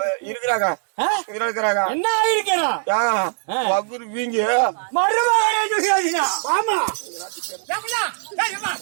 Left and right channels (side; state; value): left; silent; digital silence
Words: இருக்கிறாங்க இருக்கிறாங்க. என்ன ஆயிருக்கிறான் வகுறு வீங்க மருமகனே துரியோதனா. ஆமா